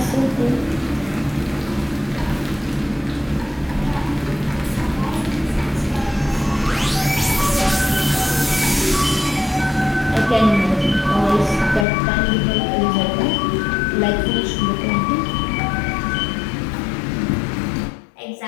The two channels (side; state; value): right; drops out; at 11.9 s